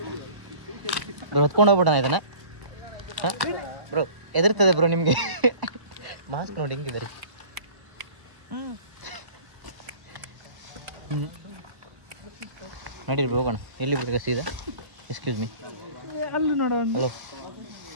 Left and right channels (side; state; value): left; late; 1.1 ms